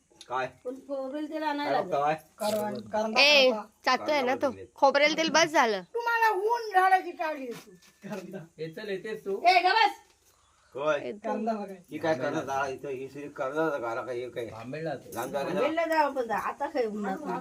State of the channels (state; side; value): identical; both; correlation 1.00